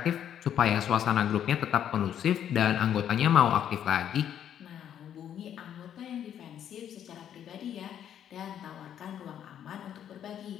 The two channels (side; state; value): right; quieter; 9.8 dB